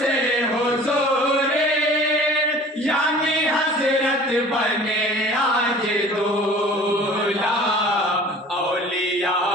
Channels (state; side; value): normal; both; correlation 0.45